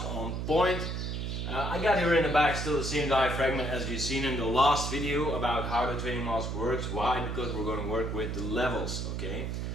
on point. I got here in the back still the same diaphragm as you've seen in the last video about how the training mask works. Why? Because we're going to work with the levels, okay?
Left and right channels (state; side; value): noise; right; hum, 3 dB below the sound